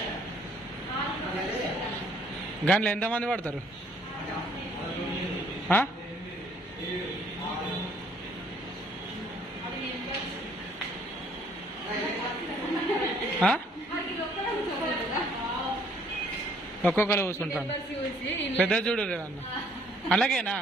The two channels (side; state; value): both; normal; correlation 0.63